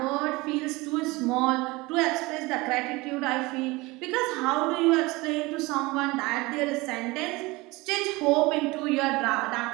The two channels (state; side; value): quieter; left; 22.5 dB